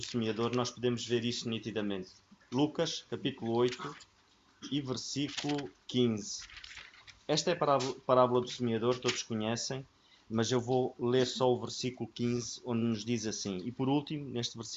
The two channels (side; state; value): both; identical; correlation 1.00